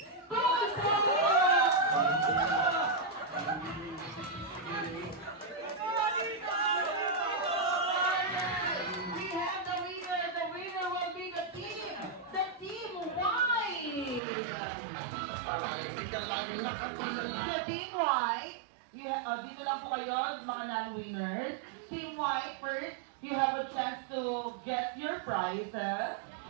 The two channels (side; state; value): left; drops out; at 14.2 s